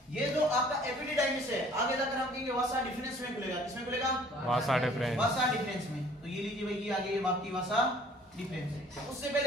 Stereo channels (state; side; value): normal; both; correlation 0.54